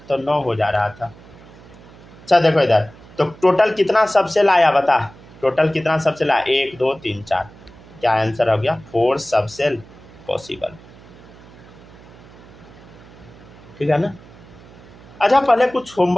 तो 9 हो जा रहा था। अच्छा देखो इधर, तो टोटल कितना सबसेल आया बता, टोटल कितना सबसेल आया 1 2 3 4, क्या आंसर हो गया 4 सबसेल पॉसिबल, ठीक है ना। अच्छा पहले कुछ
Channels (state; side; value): noise; right; hum, 22 dB below the sound